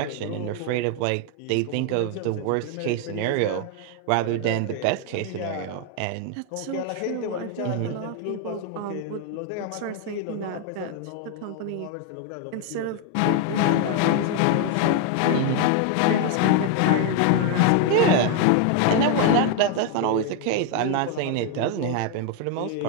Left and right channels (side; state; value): both; different; correlation 0.01